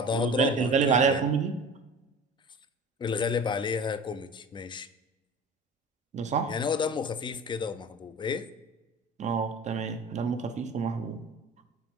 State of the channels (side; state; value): both; normal; correlation 0.38